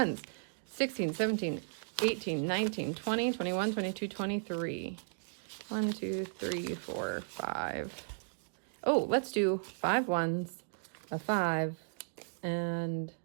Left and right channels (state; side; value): silent; left; digital silence